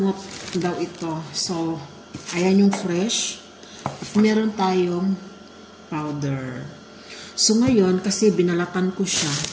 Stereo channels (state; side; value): identical; both; correlation 1.00